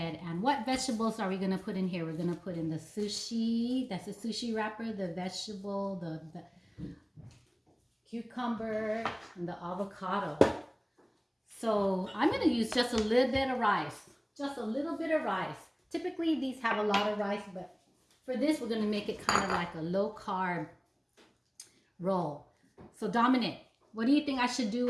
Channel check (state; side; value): identical; both; correlation 1.00